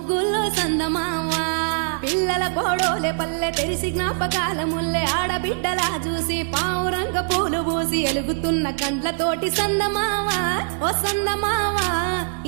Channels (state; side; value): silent; left; digital silence